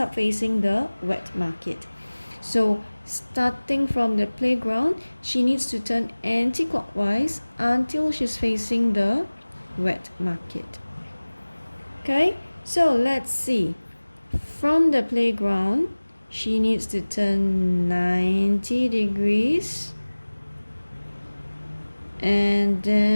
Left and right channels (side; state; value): both; inverted; correlation -1.00